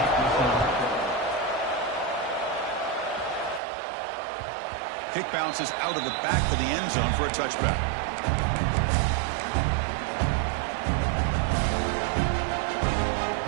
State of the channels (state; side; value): drops out; left; at 3.6 s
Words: Kick bounces out of the back of the end zone for a touchback.